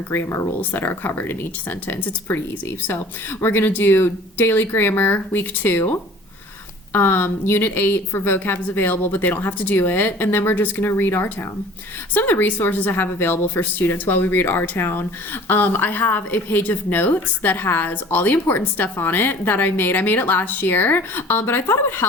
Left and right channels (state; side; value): normal; both; correlation 0.47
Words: grammar rules that are covered in each sentence. It's pretty easy. So we're going to do daily grammar week 2. Unit 8 for vocab is available, but they don't have to do it. And then we're just going to read our town. Some of the resources I have available for students while we read our town. I have a page of notes that has all the important stuff on it that I made. I made it last year, but I thought it would